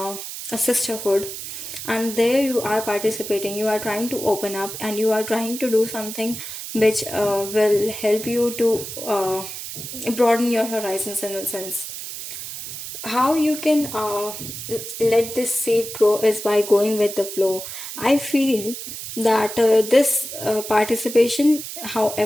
sisterhood. And there you are participating, you are trying to open up, and you are trying to do something which will help you to broaden your horizons in a sense. How you can let this seed grow is by going with the flow. I feel that this participation,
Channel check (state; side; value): noise; right; hiss, 9 dB below the sound